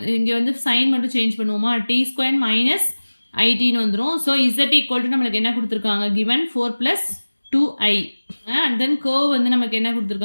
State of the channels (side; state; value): both; inverted; correlation -1.00